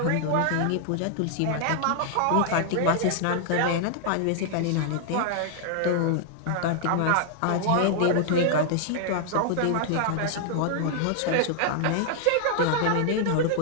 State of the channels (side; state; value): both; different; correlation 0.00